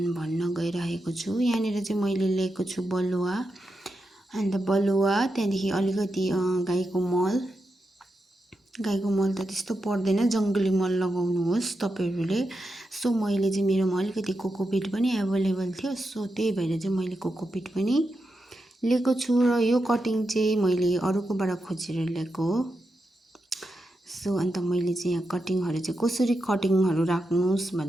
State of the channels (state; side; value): normal; both; correlation 0.87